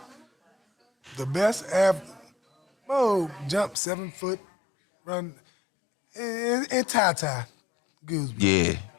The best athlete. Mo jumped 7 foot, run, and tie. Goosebumps. Yeah.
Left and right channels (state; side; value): drops out; right; at 3.8 s